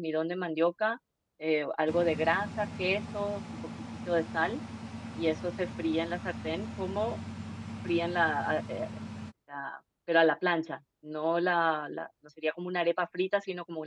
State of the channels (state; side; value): identical; both; correlation 1.00